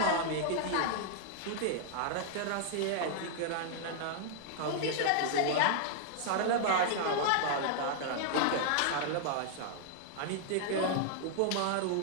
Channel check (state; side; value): different; both; correlation -0.01